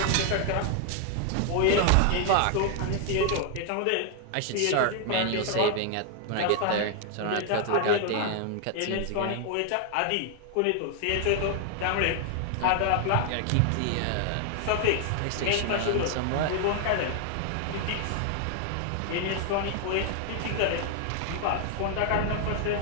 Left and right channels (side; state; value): both; different; correlation 0.00